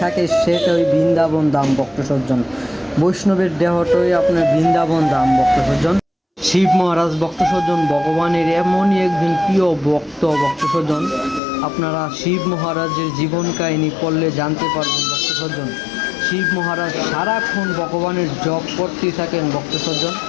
থাকে সেটা ওই বৃন্দাবন ধাম ভক্ত সজ্জন। বৈষ্ণবের দেহটাই আপনার বৃন্দাবন ধাম ভক্ত সজ্জন। শিব মহারাজ ভক্ত সজ্জন ভগবানের এমনই একজন প্রিয় ভক্ত ভক্ত সজ্জন। আপনারা শিব মহারাজের জীবন কাহিনী পড়লে জানতে পারবেন ভক্ত সজ্জন। শিব মহারাজ সারাক্ষণ ভগবানের জপ করতেই থাকেন ভক্ত সজ্জন।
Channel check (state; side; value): drops out; right; at 11.4 s